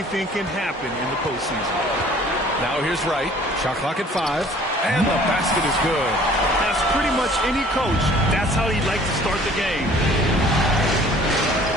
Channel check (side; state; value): both; normal; correlation 0.53